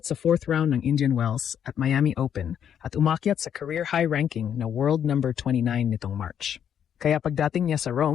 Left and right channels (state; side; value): quieter; right; 8.9 dB